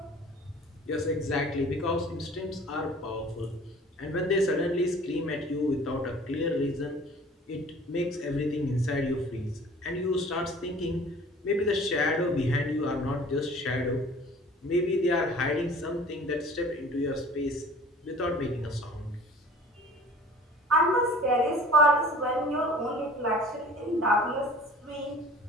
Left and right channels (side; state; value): both; normal; correlation 0.47